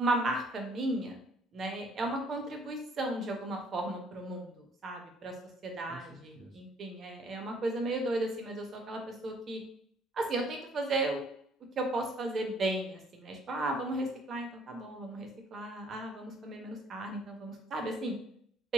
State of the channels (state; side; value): normal; both; correlation 0.61